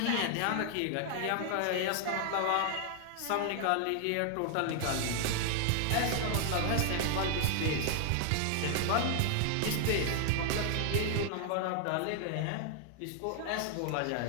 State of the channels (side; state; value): both; different; correlation 0.00